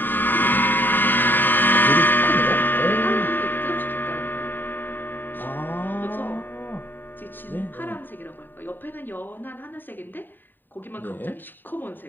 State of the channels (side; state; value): right; late; 0.092 ms